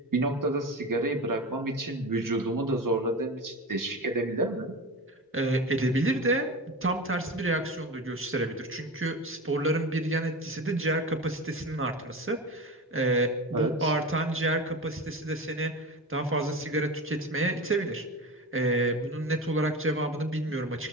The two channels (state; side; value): normal; both; correlation 0.28